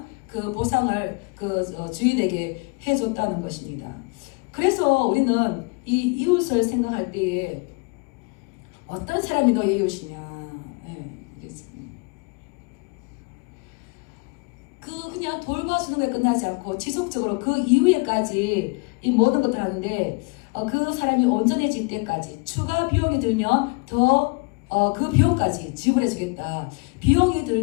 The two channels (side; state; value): right; quieter; 30.3 dB